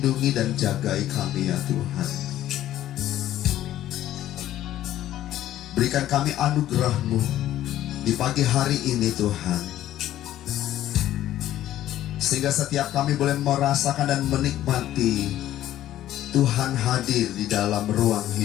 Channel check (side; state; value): right; quieter; 13.0 dB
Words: dan jagai kami ya Tuhan. Berikan kami anugerah-Mu di pagi hari ini Tuhan, sehingga setiap kami boleh merasakan dan menikmati Tuhan hadir di dalam ruang